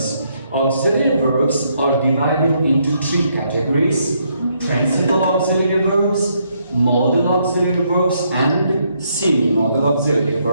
Auxiliary verbs are divided into three categories: principal auxiliary verbs, modal auxiliary verbs, and semi-modal auxiliary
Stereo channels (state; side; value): inverted; both; correlation -0.74